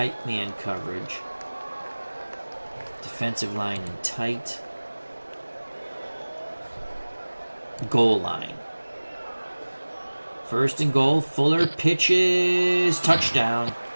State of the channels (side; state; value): both; inverted; correlation -1.00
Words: man coverage. Defensive line in tight. Goal line. First and goal. Fuller pitches. Touchdown.